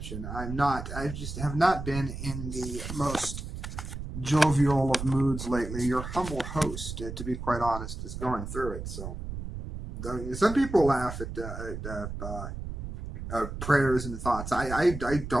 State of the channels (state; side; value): noise; right; rumble, 7 dB below the sound